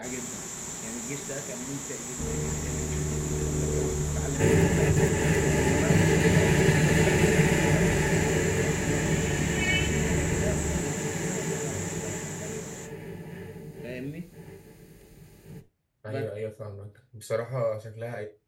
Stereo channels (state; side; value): identical; both; correlation 1.00